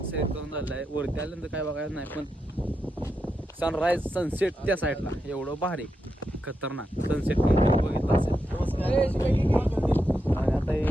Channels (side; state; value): both; normal; correlation 0.86